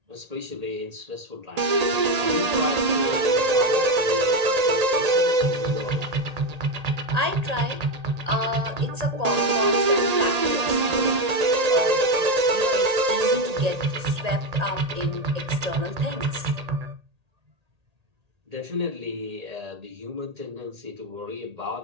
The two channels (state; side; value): late; left; 1.8 ms